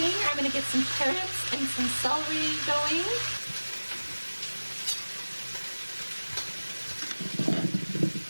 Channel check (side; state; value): both; inverted; correlation -1.00